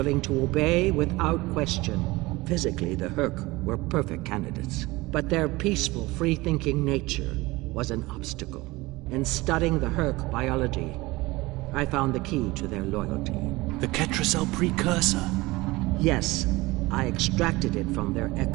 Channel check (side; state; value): left; quieter; 21.1 dB